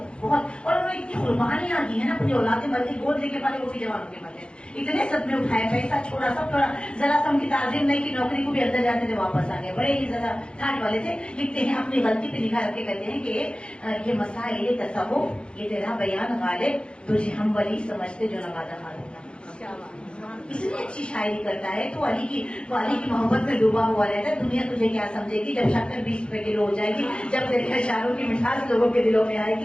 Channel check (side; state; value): right; late; 0.055 ms